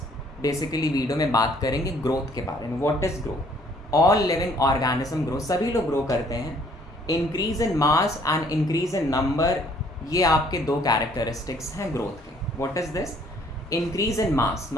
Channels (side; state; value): both; normal; correlation 0.61